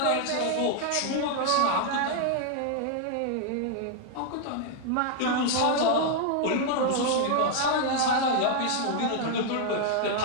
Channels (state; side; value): different; both; correlation 0.00